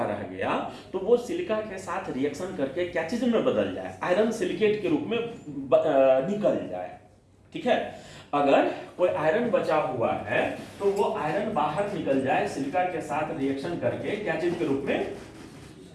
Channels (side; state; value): both; identical; correlation 1.00